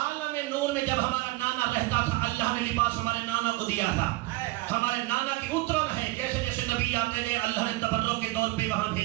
نور میں جب ہمارا نانا رہتا تھا اللہ نے لباس ہمارے نانا کو دیا تھا. ہمارے نانا کی اترن ہے, جیسے جیسے نبی آتے گئے اللہ نے تبرک کے طور پہ وہاں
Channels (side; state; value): left; quieter; 20.6 dB